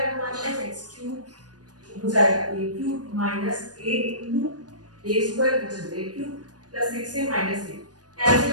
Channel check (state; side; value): late; left; 0.69 ms